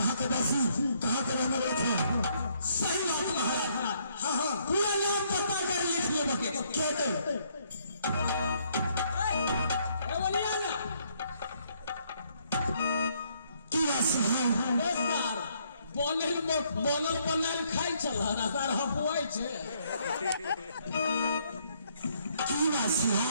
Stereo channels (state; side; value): inverted; both; correlation -0.69